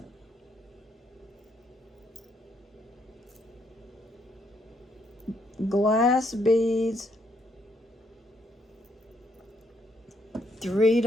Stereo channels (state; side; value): normal; both; correlation 0.72